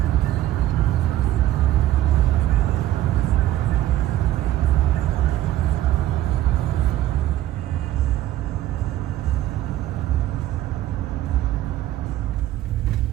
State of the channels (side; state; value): left; quieter; 13.4 dB